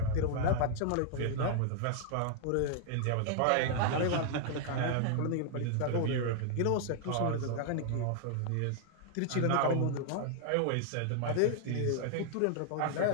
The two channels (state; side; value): different; both; correlation 0.00